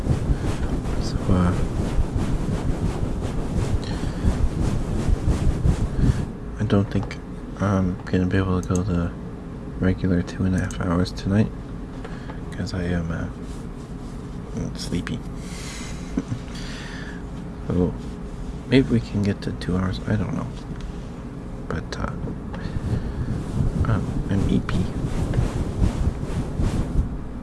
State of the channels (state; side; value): identical; both; correlation 1.00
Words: So, I don't think I'm gonna be able to go the regular 2.5 hours tonight because I am sleepy. So maybe we can get to 2 hours. I don't know, but I'm EP.